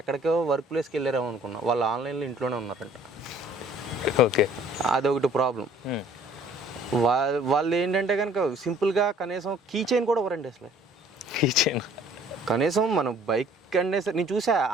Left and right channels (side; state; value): both; normal; correlation 0.56